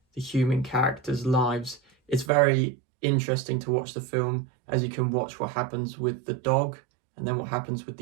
the human characters' lives, it's very interesting to watch the film, as you can watch what happens with the dog and then what happens with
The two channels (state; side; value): drops out; left; at 2.3 s